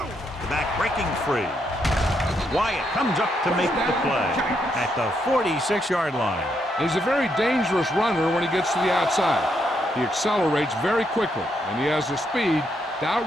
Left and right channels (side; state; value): both; normal; correlation 0.78